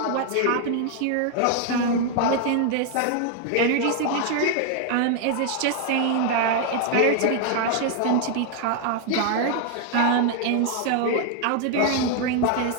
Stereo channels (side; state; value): both; different; correlation 0.00